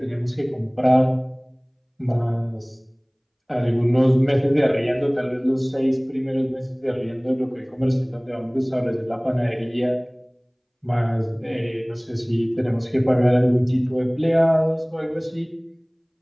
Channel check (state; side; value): identical; both; correlation 1.00